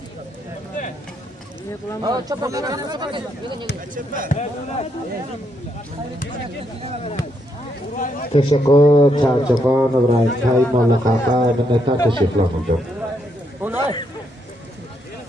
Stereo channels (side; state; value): both; normal; correlation 0.77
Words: Teşekkür Çarçakan İbrahim Tay Mollaqaqa minnettar teşekkürler.